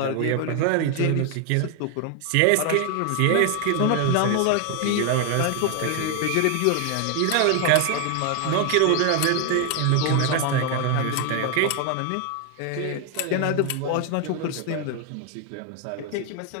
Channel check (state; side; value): different; both; correlation 0.01